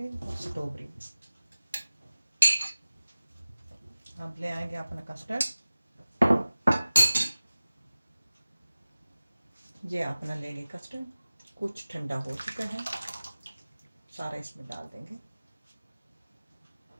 और स्ट्रॉबेरी। अब ले आएंगे अपना कस्टर्ड। ये अपना लेंगे कस्टर्ड, कुछ ठंडा हो चुका है, सारा इसमें डाल देंगे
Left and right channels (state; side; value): inverted; both; correlation -0.97